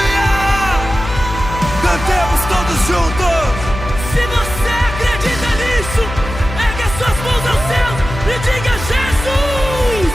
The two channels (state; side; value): noise; left; hum, 9 dB below the sound